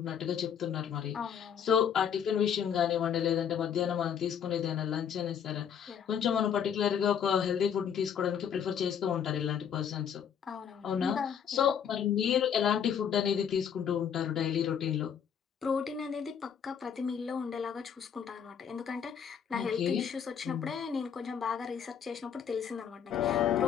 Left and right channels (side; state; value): right; quieter; 8.1 dB